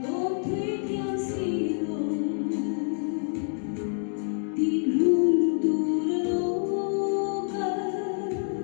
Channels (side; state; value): right; silent; 60 dB below the other